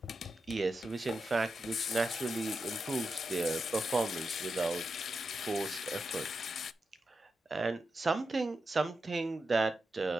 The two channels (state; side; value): normal; both; correlation 0.88